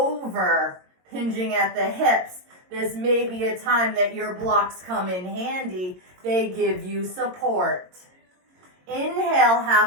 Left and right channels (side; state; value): left; late; 22 ms